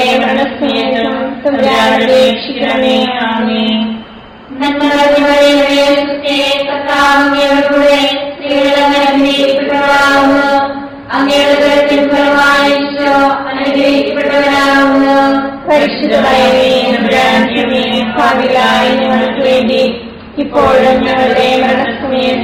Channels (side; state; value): both; identical; correlation 1.00